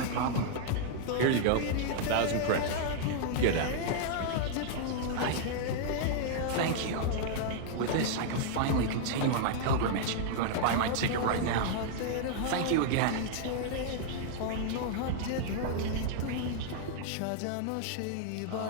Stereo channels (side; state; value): both; different; correlation -0.01